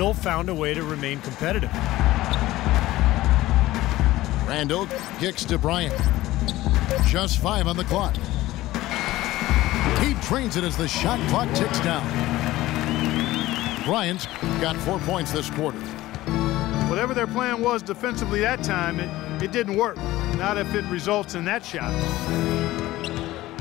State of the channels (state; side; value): quieter; right; 16.7 dB